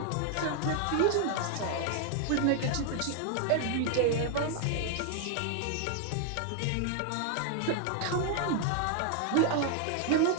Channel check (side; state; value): both; different; correlation 0.00